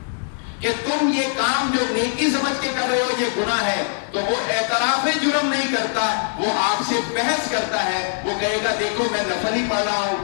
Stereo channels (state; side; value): silent; right; digital silence